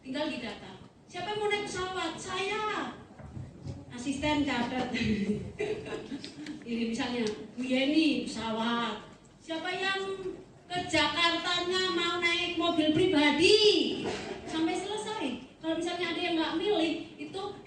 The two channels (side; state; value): both; identical; correlation 1.00